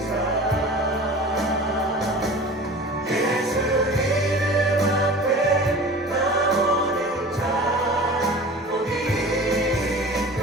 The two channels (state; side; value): normal; both; correlation 0.39